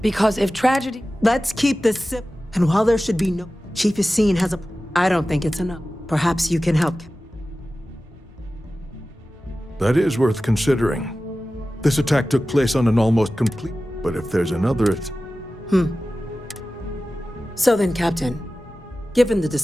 because if tragedy... Let's keep this sip. And while there should be no... Chief Yassine has a... I don't think it's enough. Perhaps you can help. That is worth considering. This attack took place on an almost complete... But if there's another... So then, Captain, given the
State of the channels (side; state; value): both; normal; correlation 0.95